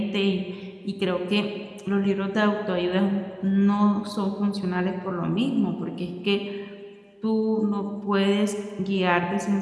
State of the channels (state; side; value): identical; both; correlation 1.00